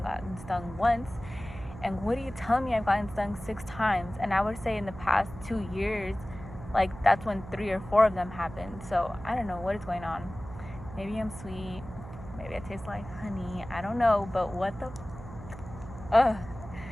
gotten stung once. And what do you tell me I've gotten stung 6 times? And I would say in the past 2 years, like that's when 3 or 4 of them happened. So I don't know what is going on. Maybe I'm sweet, maybe I taste like honey, I don't know, but what the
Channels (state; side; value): noise; right; hum, 13 dB below the sound